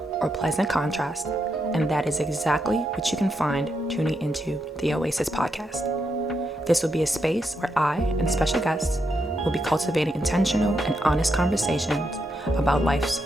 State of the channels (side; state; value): both; normal; correlation 0.82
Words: or pleasant contrast, and that is exactly what you can find tuning into the Oasis podcast. This will be a space where I and special guests will be cultivating intentional and honest conversations about life's